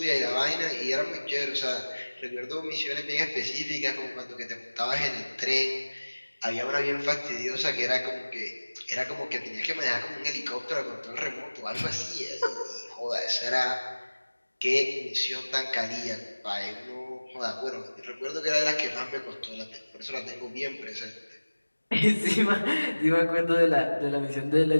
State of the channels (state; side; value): inverted; both; correlation -1.00